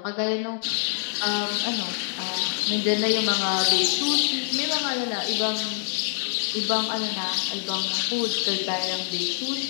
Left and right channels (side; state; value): right; silent; 61 dB below the other